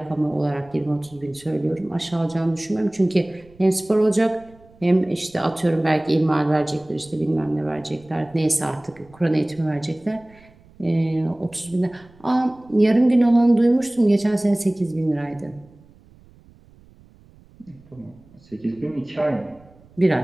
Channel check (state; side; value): noise; right; rumble, 27 dB below the sound